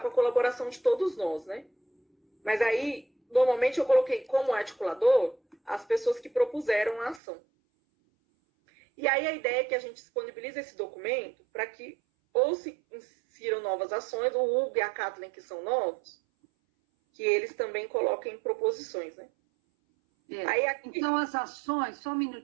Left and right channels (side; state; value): left; drops out; at 7.2 s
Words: com a colaboração de todos nós, né? Mas aí, normalmente eu coloquei como articulador as pessoas que propuseram a ação. E aí a ideia é que a gente disponibilize esse documento para que ou se insiram novas ações, o Hugo e a Kathleen, que são novos, que eles também coloquem proposições, né? Aí aqui... Então, as ações, só um